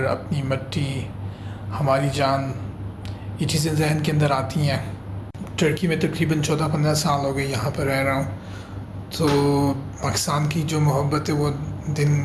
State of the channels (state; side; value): identical; both; correlation 1.00